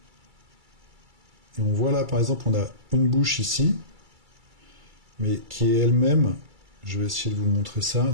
Et on voit là, par exemple, on a une bouche ici, mais qui est elle-même, je vais essayer de vous montrer ça,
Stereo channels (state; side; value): late; left; 2.3 ms